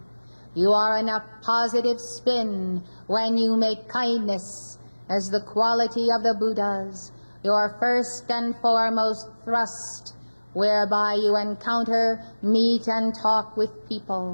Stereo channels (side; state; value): both; inverted; correlation -1.00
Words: You are in a positive spin when you make kindness as the quality of the Buddhas, your first and foremost thrust, whereby you encounter, meet, and talk with